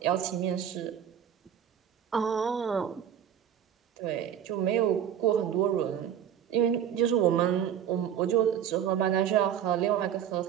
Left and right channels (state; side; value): quieter; left; 9.3 dB